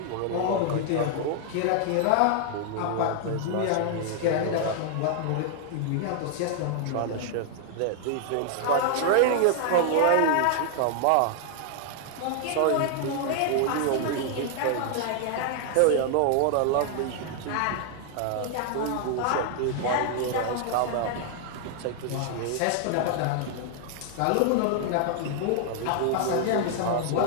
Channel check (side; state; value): both; different; correlation 0.00